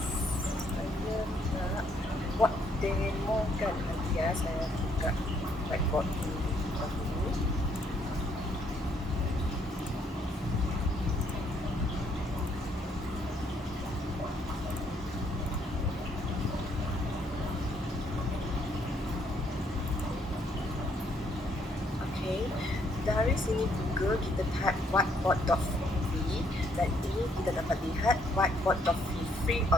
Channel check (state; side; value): normal; both; correlation 0.69